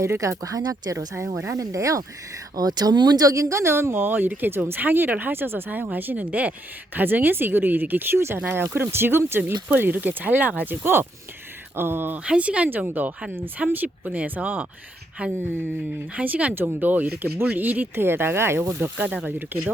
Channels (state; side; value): normal; both; correlation 0.76